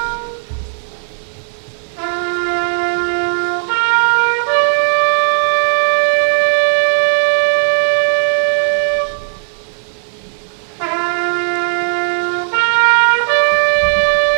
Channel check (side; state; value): left; silent; 70 dB below the other